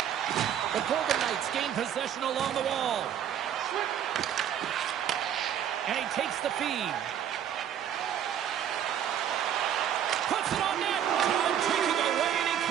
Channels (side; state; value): left; quieter; 9.7 dB